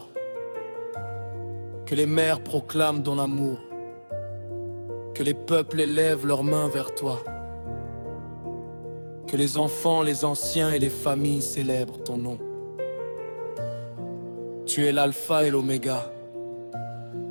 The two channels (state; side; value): inverted; both; correlation -1.00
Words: que les mers proclament ton amour, que les peuples élèvent leurs mains vers toi, que les enfants, les anciens et les familles célèbrent ton nom. Tu es l'alpha et l'oméga,